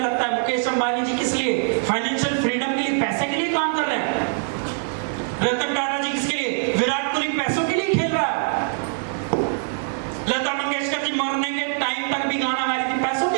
लगता है मुकेश अंबानी जी किस लिए? फाइनेंशियल फ्रीडम के लिए, पैसे के लिए काम कर रहे हैं। रतन टाटा जी किसके लिए? विराट कोहली पैसों के लिए खेल रहा है। लता मंगेशकर जी मरने के टाइम तक भी गाना गा रही थी, पैसों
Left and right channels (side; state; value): left; silent; 63 dB below the other